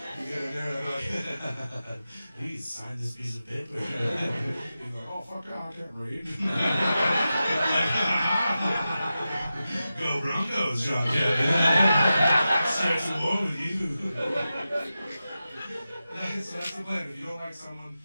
You get in there and they're like, please sign this piece of paper. He's like, oh fuck yeah, I can't read. Go Broncos, John Kevin. Starts a war with you. So that's the plan. If you don't like someone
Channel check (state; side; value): inverted; both; correlation -0.92